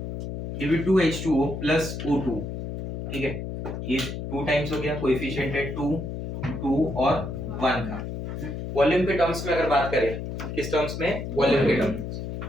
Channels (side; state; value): left; noise; hum, 6 dB below the sound